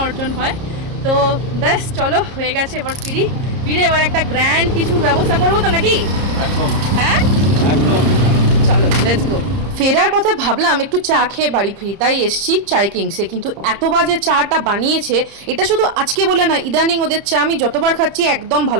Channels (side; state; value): left; late; 30 ms